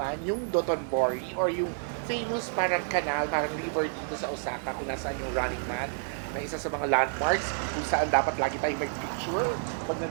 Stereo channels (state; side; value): silent; left; digital silence